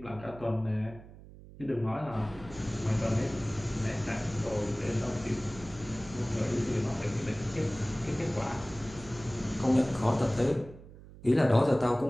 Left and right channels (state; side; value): noise; right; hum, 18 dB below the sound